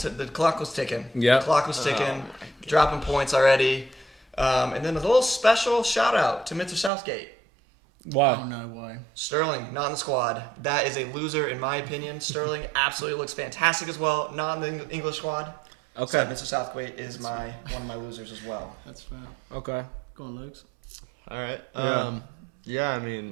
clock was ticking. Yeah. The clock was ticking, dropping points already. And then a little special shout out to Mr. Southgate. Wow. Oh, no, why? Sterling, not in the squad. That is a loser in my opinion. Sterling absolutely looks fantastic as well. Not in the English squad. Okay. So Mr. Southgate is one of my losers as well. That's fair. Okay. Go on, Luke. All right. Yeah. I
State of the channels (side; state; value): left; drops out; at 6.9 s